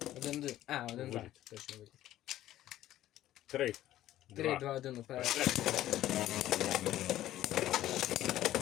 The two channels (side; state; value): right; quieter; 13.7 dB